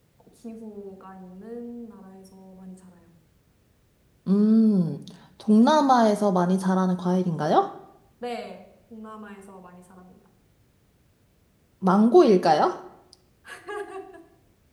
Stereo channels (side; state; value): both; identical; correlation 1.00